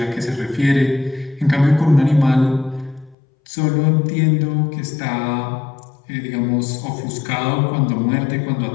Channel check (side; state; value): right; drops out; at 3.2 s